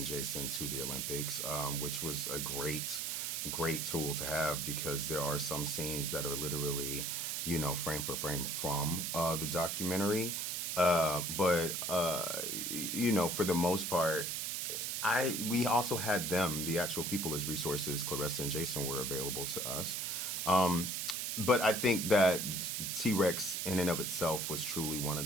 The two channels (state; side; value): noise; right; hiss, 1 dB below the sound